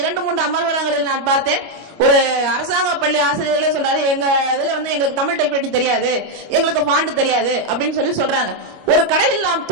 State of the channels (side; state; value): left; late; 25 ms